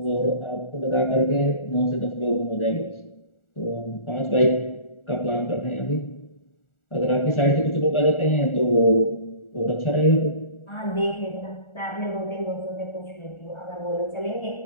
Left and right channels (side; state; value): right; late; 1.4 ms